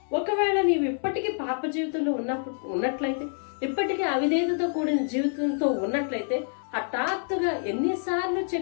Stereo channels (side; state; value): right; silent; 60 dB below the other